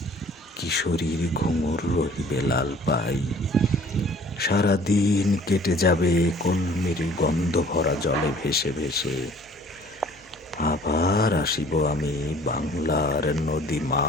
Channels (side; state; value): both; normal; correlation 0.52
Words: কিশোরীর ঘুঙুর রহিবে লাল পাই। সারাদিন কেটে যাবে কলমির গন্ধ ভরা জলে ভেসে ভেসে। আবার আসিব আমি বাংলার নদী